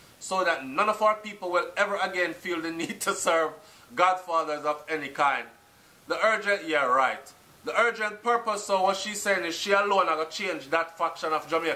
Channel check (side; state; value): both; identical; correlation 1.00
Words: so that none of our people will ever again feel the need to serve godfathers of any kind. The urgent purpose, so what she's saying is she alone are going to change that faction of